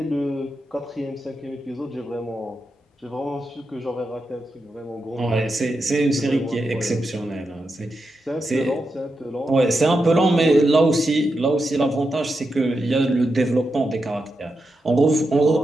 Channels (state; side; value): normal; both; correlation 0.87